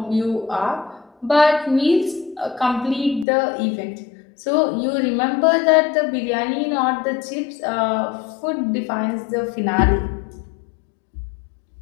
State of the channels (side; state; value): right; drops out; at 3.2 s